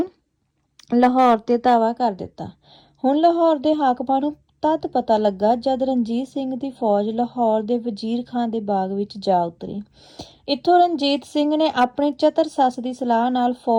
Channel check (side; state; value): both; identical; correlation 1.00